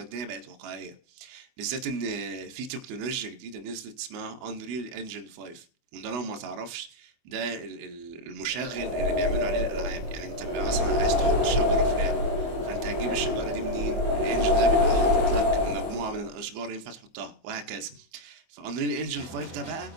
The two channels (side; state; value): left; late; 24 ms